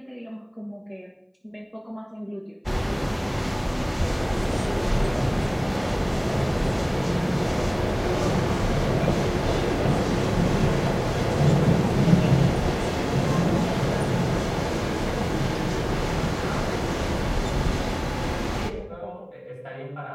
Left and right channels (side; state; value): both; identical; correlation 1.00